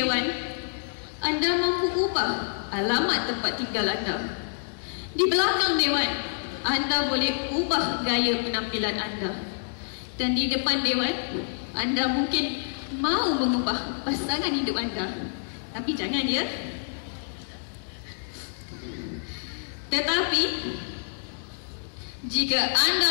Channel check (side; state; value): right; silent; digital silence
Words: anda mampu ubah alamat tempat tinggal anda. Di belakang dewan, anda boleh ubah gaya penampilan anda. Dan di depan dewan, anda mungkin mahu mengubah pasangan hidup anda. Tapi jangan ya. Tetapi jika